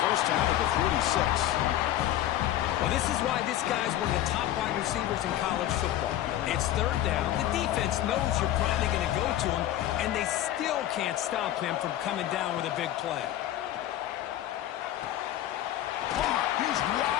first down at the 46. Well, this is why this guy's one of the top wide receivers in college football. It's third down. The defense knows you're probably going to go to him, and they still can't stop him from coming down with a big play. Oh, he's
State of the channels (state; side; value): quieter; right; 13.0 dB